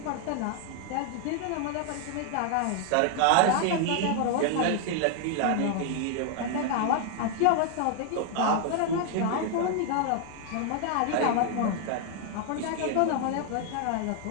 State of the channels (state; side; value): different; both; correlation 0.00